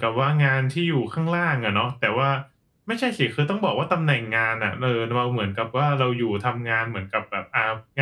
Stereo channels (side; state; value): both; identical; correlation 1.00